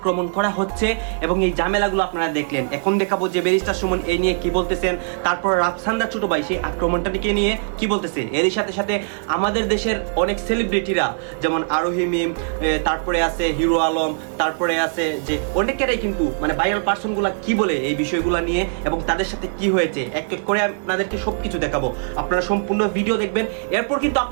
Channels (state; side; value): silent; left; digital silence